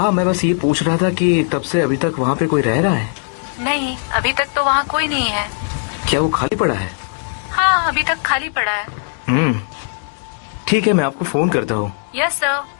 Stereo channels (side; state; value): right; silent; digital silence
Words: मैं बस ये पूछ रहा था कि तब से अभी तक वहाँ पे कोई रह रहा है? नहीं, अभी तक तो वहाँ कोई नहीं है। क्या वो खाली पड़ा है? हाँ, अभी तक खाली पड़ा है। ठीक है, मैं आपको फोन करता हूँ। यस सर,